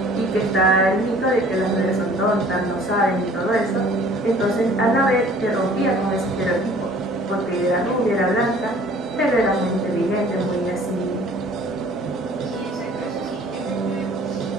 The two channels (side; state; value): both; normal; correlation 0.52